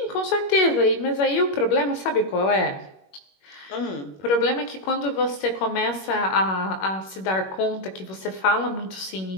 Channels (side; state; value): right; late; 21 ms